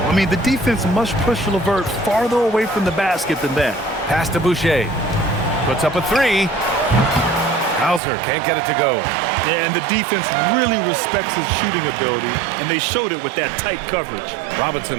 I mean, the defense must push LeVert farther away from the basket than that. Pass to Boucher. Puts up a 3. Hauser can't get it to go. Yeah, and the defense really respects his shooting ability, and they showed it with that tight coverage.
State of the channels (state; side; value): drops out; left; at 8.0 s